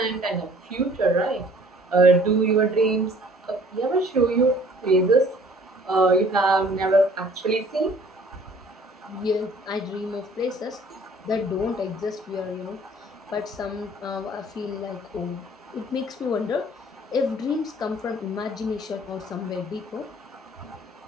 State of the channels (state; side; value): normal; both; correlation 0.54